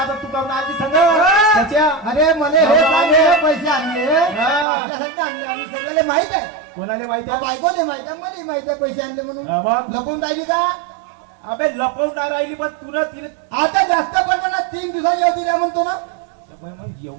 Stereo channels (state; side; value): drops out; left; at 4.7 s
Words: तू काऊन आलती संग त्याच्या? अरे मला हे बाबा, चांगले पैसे आणले, हा. माझ्यासाठी आणले आणि सगळ्याला माहित आहे. कोणाला माहिती आहे? बायकोले माहित आहे, मला माहित आहे पैसे आणले म्हणून. हा, मग? लपवून राहिली का? अबे लपवणार राहिली पण तुला तिने आता जास्त पण ना 3 दिवसाची अवधी द्या म्हणतो ना. मग